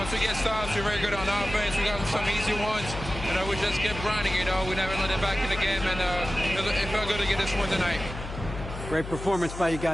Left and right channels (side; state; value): left; noise; hum, 10 dB below the sound